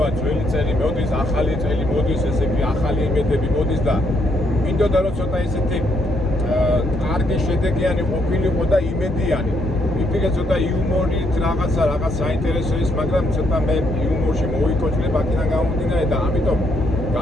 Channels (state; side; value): normal; both; correlation 0.73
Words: ძველი წელი მოდის, ახალი წელი მოდის, ესე იგი ახალი იმედები მოდის და მინდოდა რომ ცოტა ესეთი კარგი შედეგიანი ყოფილიყო და იმედიანი. ვიფიქრე ცოტა იუმორით რაღაც საინტერესო ის, მაგრამ ცოტა მე იუმორში მოვიკოჭლებ აქედან გამომდინარე და ამიტომ